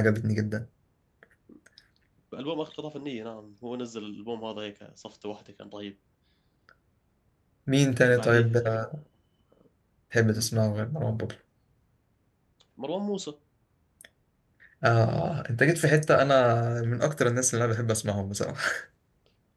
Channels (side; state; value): both; identical; correlation 1.00